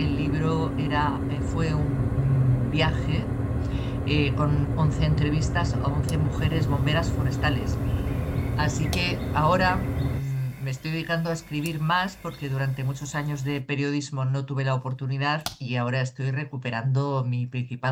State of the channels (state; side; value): identical; both; correlation 1.00